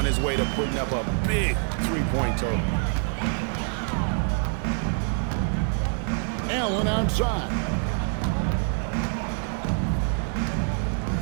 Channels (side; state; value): left; silent; 61 dB below the other